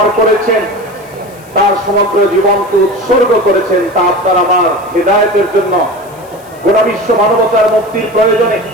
করেছেন, তার সমগ্র জীবনকে উৎসর্গ করেছেন তা আপনার আমার হেদায়েতের জন্য, গোটা বিশ্ব মানবতার মুক্তির প্রয়োজনে।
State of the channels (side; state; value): left; noise; hiss, 26 dB below the sound